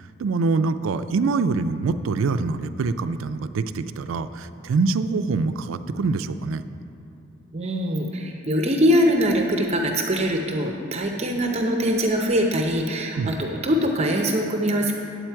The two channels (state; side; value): normal; both; correlation 0.51